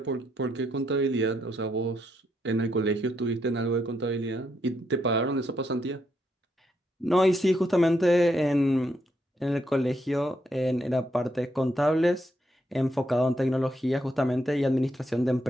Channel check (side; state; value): both; normal; correlation 0.78